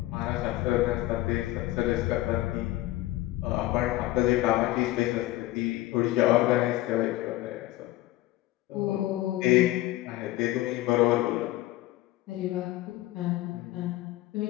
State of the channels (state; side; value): quieter; right; 16.9 dB